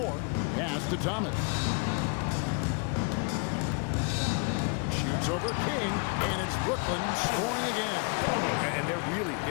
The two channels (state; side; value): quieter; right; 33.6 dB